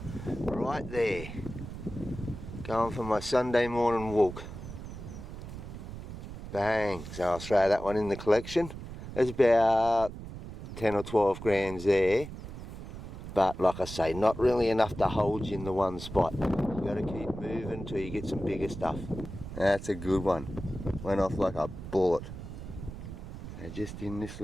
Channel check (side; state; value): right; noise; rumble, 10 dB below the sound